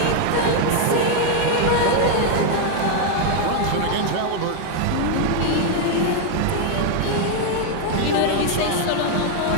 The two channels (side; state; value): both; different; correlation 0.01